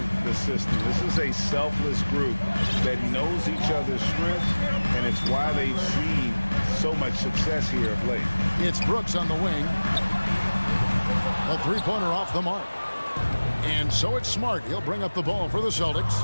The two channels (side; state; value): both; inverted; correlation -1.00